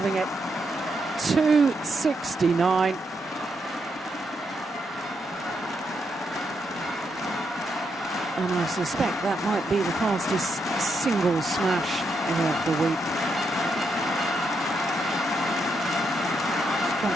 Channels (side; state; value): both; normal; correlation 0.80